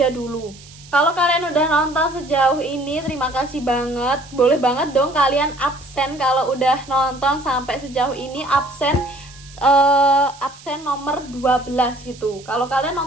dulu. Kalau kalian udah nonton sejauh ini, terima kasih banget. Boleh banget dong kalian absen kalau udah nonton sampai sejauh ini. Absen nomor 12 gitu. Kalau kalian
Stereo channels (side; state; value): right; noise; hiss, 21 dB below the sound